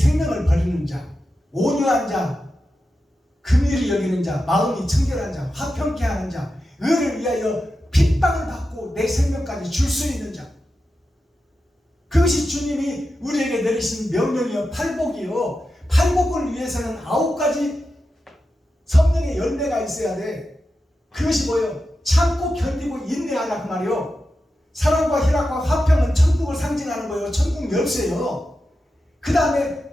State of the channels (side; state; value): both; normal; correlation 0.90